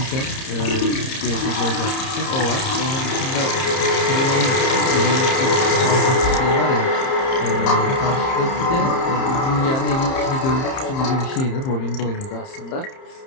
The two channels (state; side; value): late; right; 30 ms